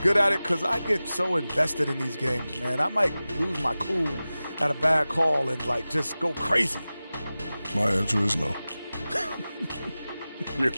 at it because I get so invested in these games, man. I might lose my cool at a bad call and, just go crazy. My answer is no. You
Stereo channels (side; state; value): both; inverted; correlation -0.96